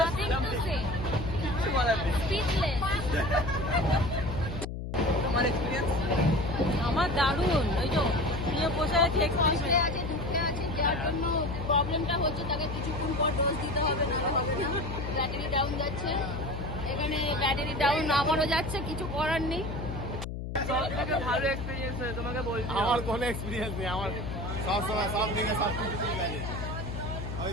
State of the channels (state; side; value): noise; left; hum, 6 dB below the sound